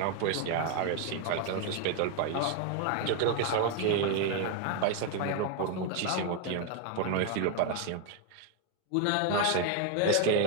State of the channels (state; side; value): different; both; correlation 0.01